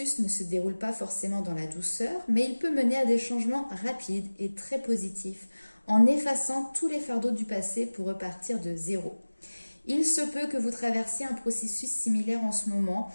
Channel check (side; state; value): both; inverted; correlation -1.00